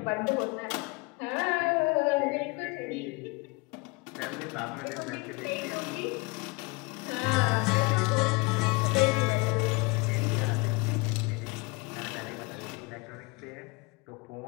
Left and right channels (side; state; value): right; quieter; 26.8 dB